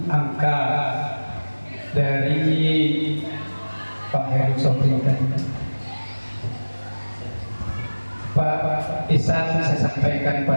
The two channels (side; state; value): both; inverted; correlation -1.00